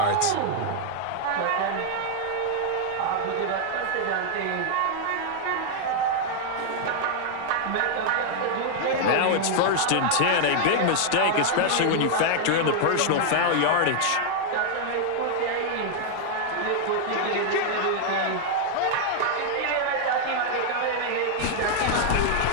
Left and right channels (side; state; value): both; different; correlation 0.00